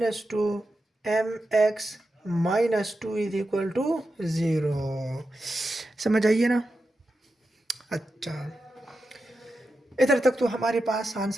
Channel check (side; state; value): both; normal; correlation 0.89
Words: 2mx minus 2 is equal to 0। समझ आइए ना। अच्छा, इधर तक तो हमारे पास